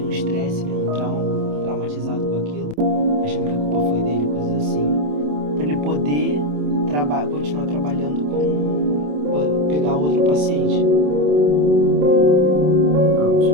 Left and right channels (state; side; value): late; left; 27 ms